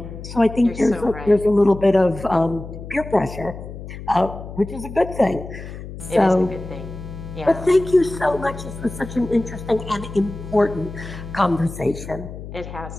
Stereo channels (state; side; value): noise; left; hum, 11 dB below the sound